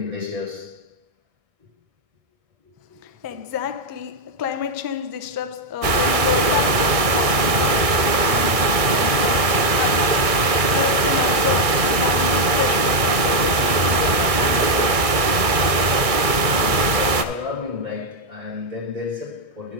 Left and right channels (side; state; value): left; late; 1.6 ms